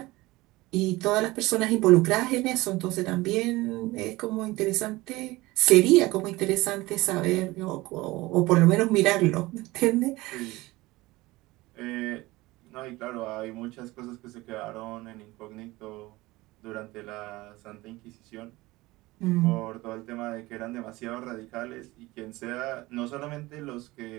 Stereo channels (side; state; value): left; quieter; 20.1 dB